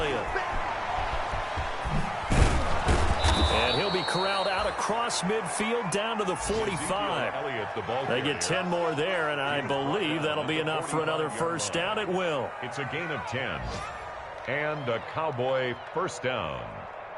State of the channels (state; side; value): identical; both; correlation 1.00